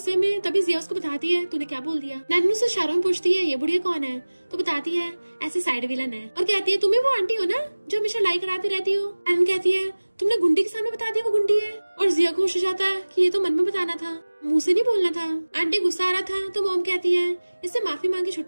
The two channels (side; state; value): both; inverted; correlation -1.00